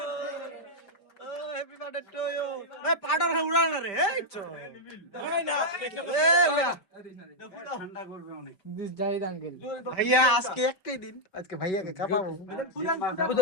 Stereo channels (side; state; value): right; late; 5.1 ms